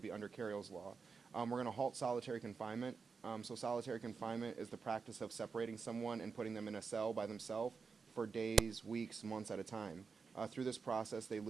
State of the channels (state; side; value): quieter; left; 5.1 dB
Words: be under Carriel's law. We're going to halt solitary confinement. So solitary confinement is the practice of separating someone and putting them in a cell by themselves for days, weeks, months at a time. Through this process, they